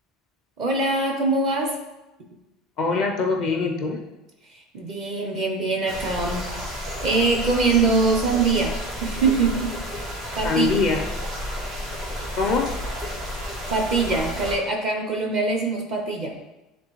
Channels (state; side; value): normal; both; correlation 0.30